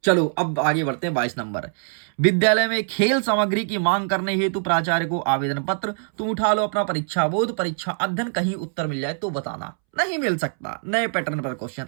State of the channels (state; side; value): silent; left; 63 dB below the other